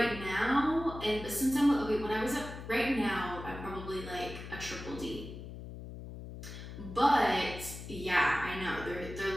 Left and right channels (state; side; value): noise; left; hum, 11 dB below the sound